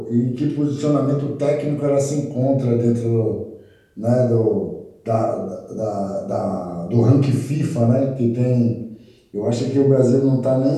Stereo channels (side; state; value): both; identical; correlation 1.00